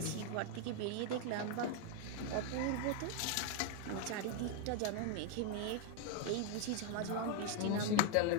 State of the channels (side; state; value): both; different; correlation 0.00